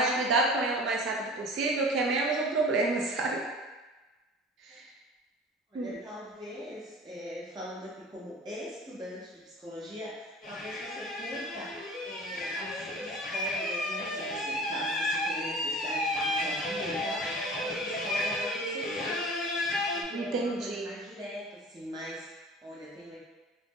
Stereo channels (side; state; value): both; normal; correlation 0.40